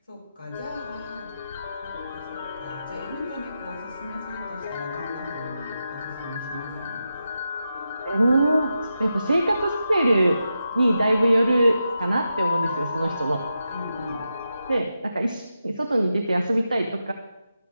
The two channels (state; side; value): inverted; both; correlation -0.88